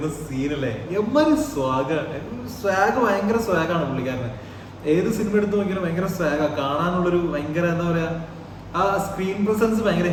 സീനല്ലേ, എമ്മാരി സ്വാഗ് ഭയങ്കര സ്വാഗാണ് പുള്ളിക്കാരന്. ഏത് സിനിമ എടുത്ത് നോക്കിയാലും ഭയങ്കര സ്വാഗാ, കാണാനുള്ളൊരു ഭയങ്കര എന്താ പറയാ, ആ സ്ക്രീൻ പ്രസൻസ് ഭയങ്കര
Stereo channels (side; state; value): both; identical; correlation 1.00